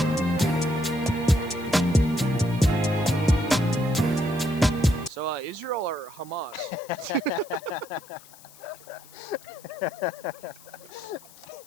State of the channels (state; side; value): noise; left; hiss, 22 dB below the sound